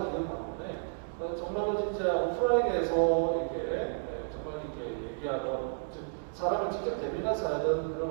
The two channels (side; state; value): left; silent; digital silence